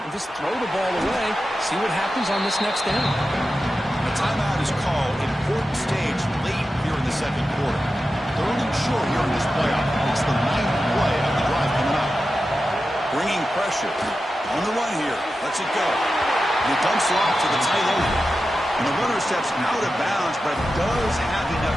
just throw the ball away. See what happens on this next down. A timeout is called. Important stage late here in the second quarter. Third and short here in this playoff. It's the 9th play of the drive coming up. Bringing pressure. On the run here. Lets it go. And he dumps it off to the tight end. And the runner steps out of bounds, but does have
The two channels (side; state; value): both; normal; correlation 0.92